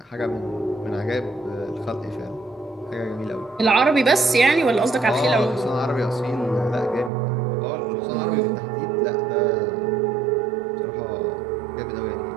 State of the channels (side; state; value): left; drops out; at 7.1 s